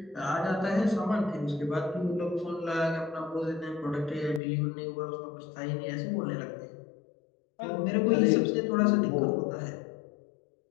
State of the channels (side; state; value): right; drops out; at 4.4 s